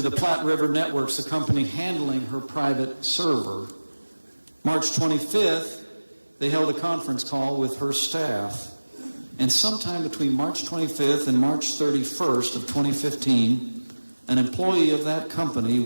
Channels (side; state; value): both; inverted; correlation -1.00